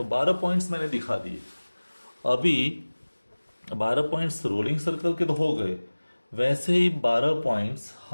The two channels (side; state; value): both; inverted; correlation -1.00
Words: 12 पॉइंट्स मैंने दिखा दिए। अभी 12 पॉइंट्स रोलिंग सर्कल के तो हो गए, वैसे ही 12 पॉइंट्स